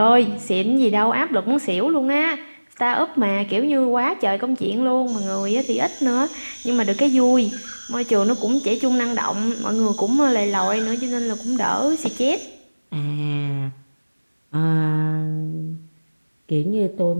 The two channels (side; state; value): both; inverted; correlation -1.00